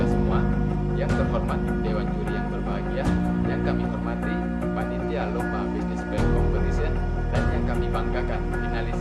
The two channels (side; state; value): both; identical; correlation 1.00